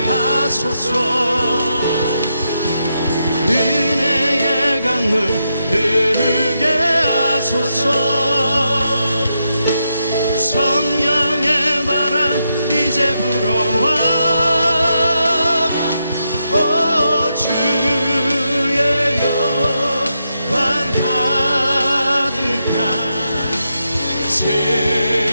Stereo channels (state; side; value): inverted; both; correlation -0.83